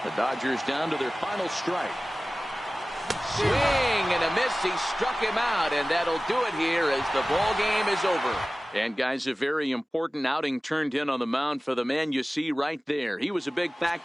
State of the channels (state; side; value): normal; both; correlation 0.97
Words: The Dodgers down to their final strike. Swing and a miss. He struck him out, and that'll do it here as the ball game is over. And guys, a very important outing turned in on the mound for the man you see right there. He was a big